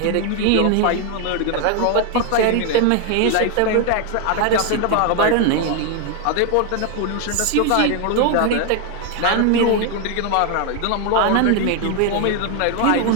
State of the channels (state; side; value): different; both; correlation 0.01